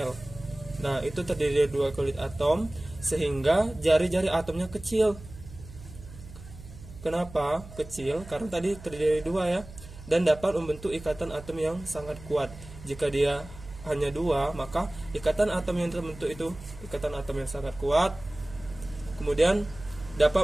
Nah, itu terdiri dari 2 kulit atom sehingga jari-jari atomnya kecil. Kenapa kecil? Karena tadi terdiri dari 2 ya, dan dapat membentuk ikatan atom yang sangat kuat. Jika dia hanya 2, maka ikatan atom yang terbentuk itu ikatan atom yang sangat kuat. Kemudian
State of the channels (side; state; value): right; noise; hum, 16 dB below the sound